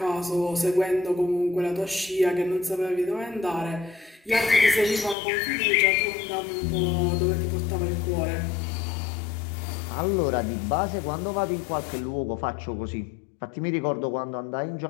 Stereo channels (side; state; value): right; drops out; at 5.2 s